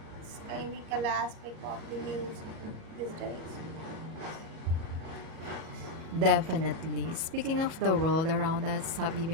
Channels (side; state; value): left; late; 37 ms